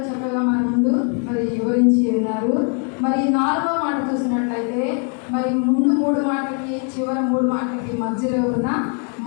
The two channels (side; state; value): right; quieter; 40.0 dB